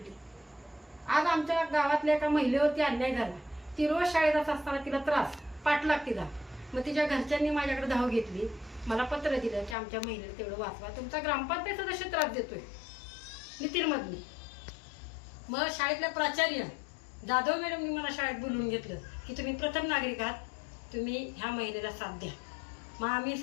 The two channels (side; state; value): right; drops out; at 9.8 s